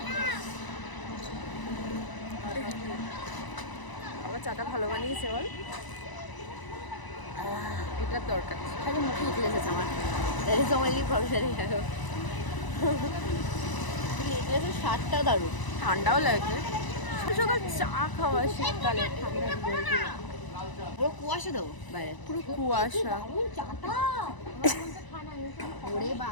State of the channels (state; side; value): late; right; 1.0 ms